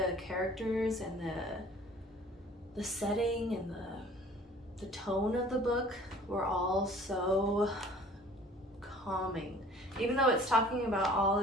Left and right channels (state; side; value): normal; both; correlation 0.50